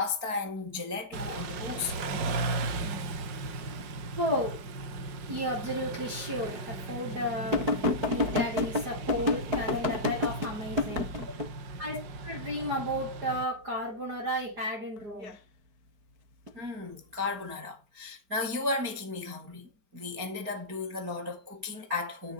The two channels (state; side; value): late; left; 4.9 ms